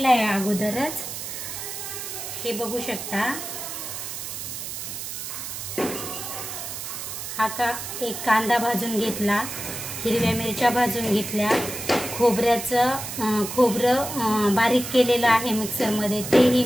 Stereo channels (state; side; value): noise; right; hiss, 7 dB below the sound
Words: आहे अगोदरच, हे बघू शकता। एक कांदा भाजून घेतला, हिरव्या मिरच्या भाजून घेतल्या, खोबरं बारीक केलेलं आहे मिक्सर मध्ये, तेही